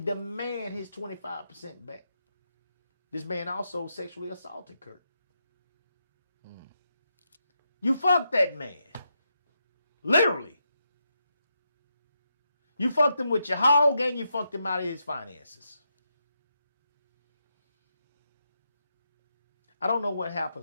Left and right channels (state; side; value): inverted; both; correlation -0.83